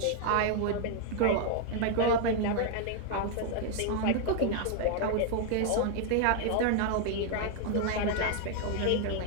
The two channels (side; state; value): both; different; correlation 0.00